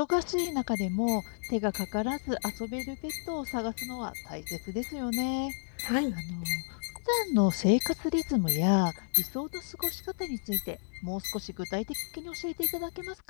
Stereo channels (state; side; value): silent; right; digital silence